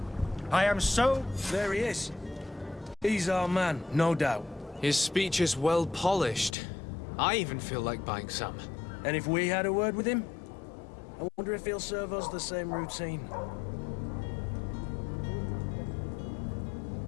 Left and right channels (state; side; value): drops out; right; at 6.5 s